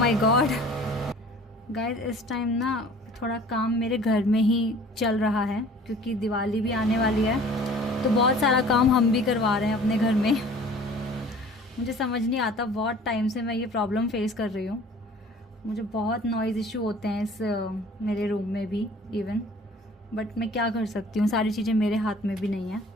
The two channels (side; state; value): both; normal; correlation 0.48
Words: गॉड गाइज, इस टाइम ना थोड़ा काम मेरे घर में ही चल रहा है क्योंकि दिवाली भी आने वाली है, तो बहुत सारा काम हम भी करवा रहे हैं अपने घर में। मुझे समझ नहीं आता, बहुत टाइम से मैं ये प्रॉब्लम फेस कर रही हूँ। मुझे बहुत नॉइज़ इशू होते हैं इस मेरे रूम में भी इवन, बट मैं क्या कर सकती हूँ, सारी चीज़ें मेरे हाथ में भी नहीं है।